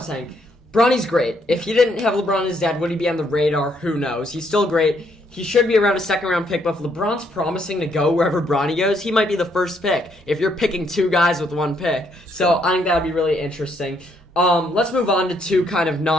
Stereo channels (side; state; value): both; normal; correlation 0.71